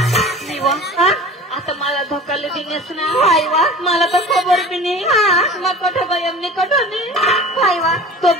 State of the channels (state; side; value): normal; both; correlation 0.40